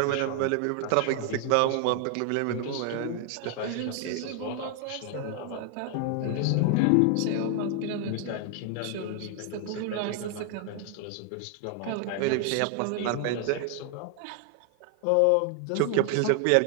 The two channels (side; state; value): both; different; correlation 0.00